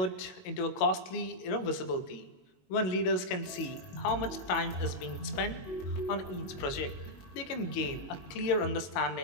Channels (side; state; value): right; late; 22 ms